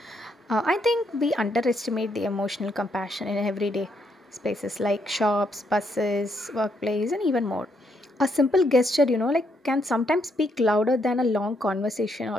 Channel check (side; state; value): both; normal; correlation 0.75